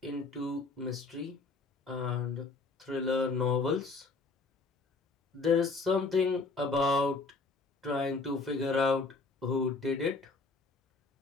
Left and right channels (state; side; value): quieter; right; 3.9 dB